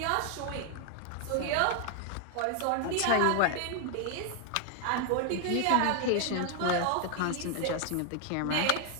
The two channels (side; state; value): both; different; correlation 0.00